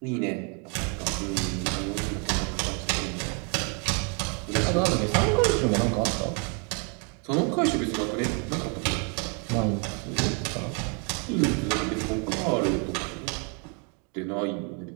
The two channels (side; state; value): left; quieter; 35.9 dB